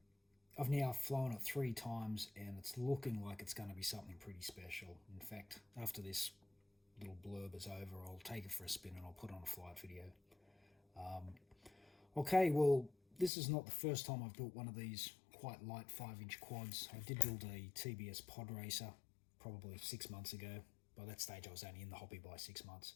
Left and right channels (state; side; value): drops out; right; at 13.3 s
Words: I've now flown it 3 times and it's looking like it's going to be something pretty special. In fact, after this little blurb is over, I'll take it for a spin and I'll put on a flight video. Okay, well, this is not the first time I've built one of these quite light 5-inch quads. I did build a TBS pod racer probably 6 months ago. By that stage, I was only in the hobby by 6 months.